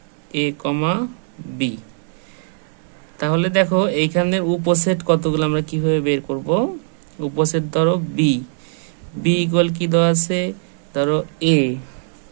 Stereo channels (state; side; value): silent; left; digital silence